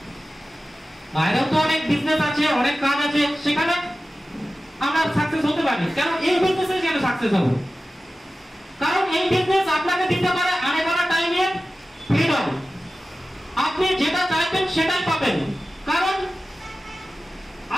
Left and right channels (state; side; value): normal; both; correlation 0.95